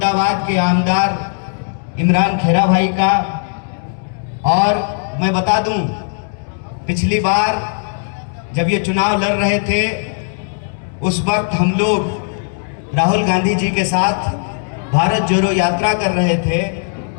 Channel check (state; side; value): silent; right; 68 dB below the other